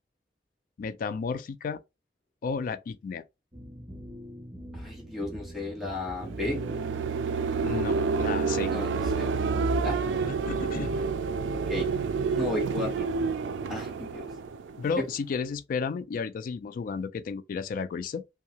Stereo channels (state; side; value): normal; both; correlation 0.26